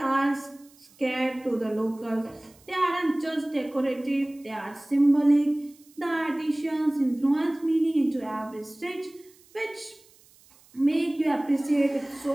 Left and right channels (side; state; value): right; noise; hiss, 28 dB below the sound